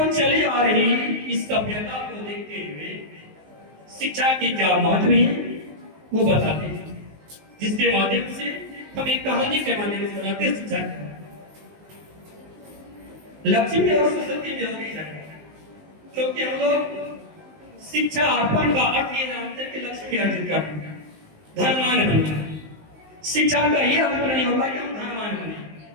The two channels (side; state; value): left; late; 19 ms